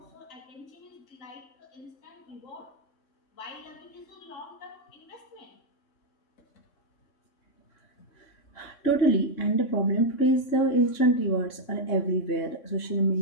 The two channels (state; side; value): late; right; 3.6 ms